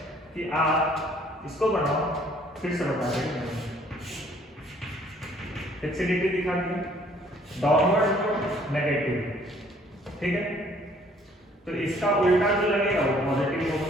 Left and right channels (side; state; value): both; normal; correlation 0.60